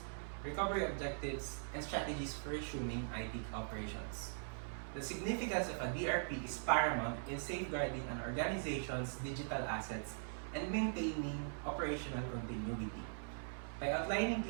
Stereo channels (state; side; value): silent; left; 50 dB below the other